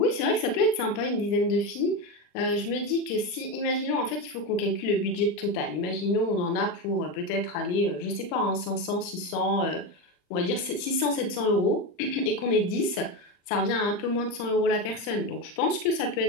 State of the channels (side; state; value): right; late; 40 ms